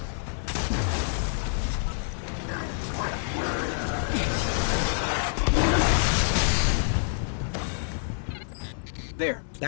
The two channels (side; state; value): right; silent; digital silence